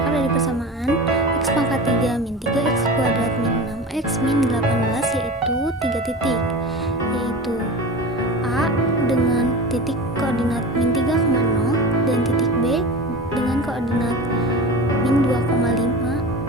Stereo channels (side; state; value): both; normal; correlation 0.31